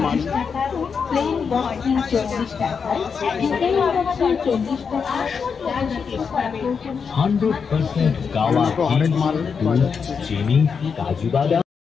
মাল। 100% গাওয়া হরেক মাল চিনি কাজু বাদাম।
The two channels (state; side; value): quieter; right; 6.0 dB